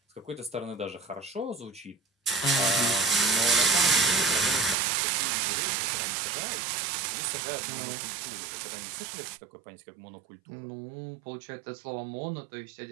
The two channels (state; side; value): drops out; left; at 4.8 s